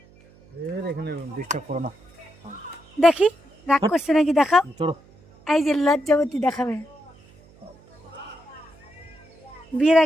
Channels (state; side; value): noise; right; hum, 27 dB below the sound